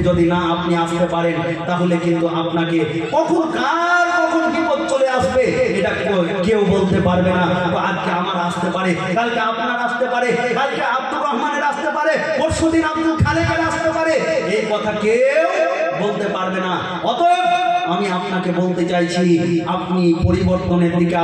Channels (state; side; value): identical; both; correlation 1.00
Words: যদি না আপনি আসতে পারেন, তাহলে কিন্তু আপনাকে কখন বিপদ চলে আসবে এটা কেউ বলতে পারবে না। আজকে আমার আসতে পারে, কালকে আপনার আসতে পারে, কালকে আব্দুর রহমানের আসতে পারে, পরশুদিন আব্দুল খালেকের আসতে পারে, এই কথা কেউ বলতে পারবে না। অতএব আমি আপনাকে বলতে চাইছি, আপনি পরিবর্তনের দিকে